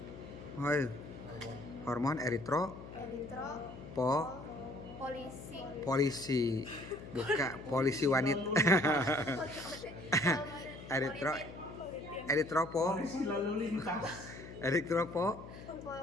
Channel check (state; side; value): noise; left; hum, 14 dB below the sound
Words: polisi, bukan polisi wanita.